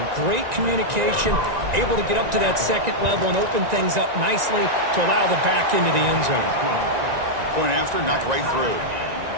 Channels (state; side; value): late; left; 1.9 ms